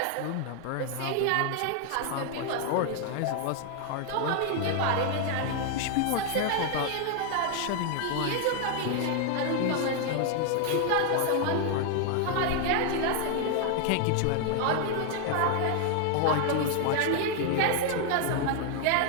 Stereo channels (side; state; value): both; different; correlation 0.00